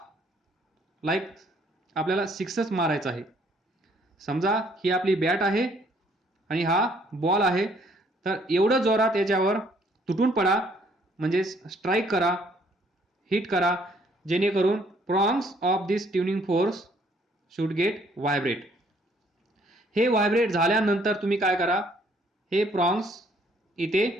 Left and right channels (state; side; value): normal; both; correlation 0.64